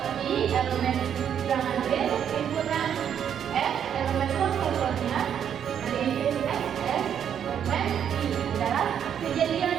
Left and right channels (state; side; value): quieter; left; 8.8 dB